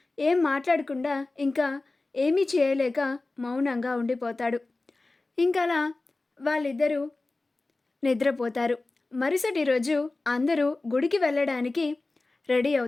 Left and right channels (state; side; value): quieter; right; 3.2 dB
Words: ఏం మాట్లాడకుండా ఇంకా ఏమీ చేయలేక మౌనంగా ఉండిపోతాడు. ఇంకలా వాళ్ళిద్దరూ నిద్రపోతారు. మరుసటి రోజు అందరూ గుడికి వెళ్ళడానికి రెడీ